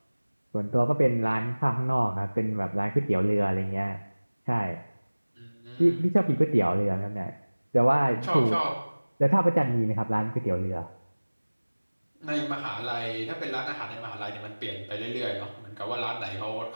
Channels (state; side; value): inverted; both; correlation -1.00